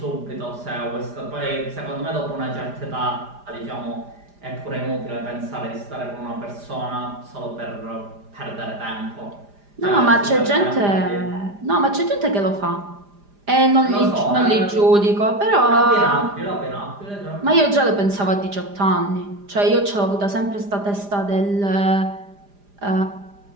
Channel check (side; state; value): left; late; 4.9 ms